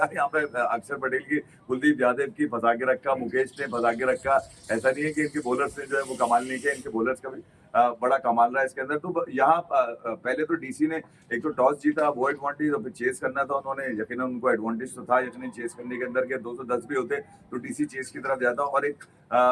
यहाँ पे अक्षर पटेल की, कुलदीप यादव की फंसा के रखा, मुकेश ने फंसा के रखा। ऐसा नहीं है कि इनके बॉलर्स ने जो है वो कमाल नहीं किया, इनके बॉलर्स का भी बड़ा कमाल रहा है इसके अंदर। तो यहाँ पहले तो डीसी ने एक तो टॉस जीता, वो एडवांटेज, और फिर चेस करना था उन्होंने, यकीनन उनको एडवांटेज तो था यकीनन चेस करने के अंदर के 210 भी होते तो डीसी चेस की तरफ जाता। और एक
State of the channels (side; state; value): both; identical; correlation 1.00